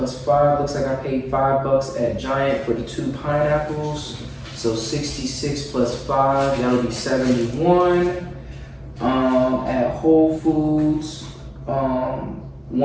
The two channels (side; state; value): both; identical; correlation 1.00